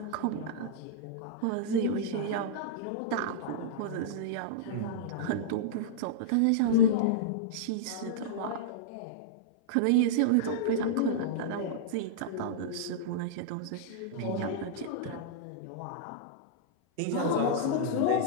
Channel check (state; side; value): different; both; correlation -0.03